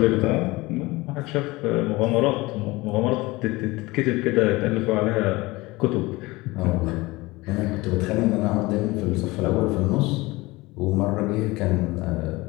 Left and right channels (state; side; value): quieter; right; 21.5 dB